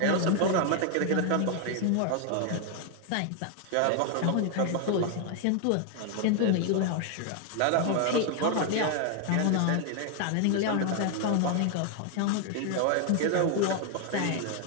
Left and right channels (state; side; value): different; both; correlation 0.00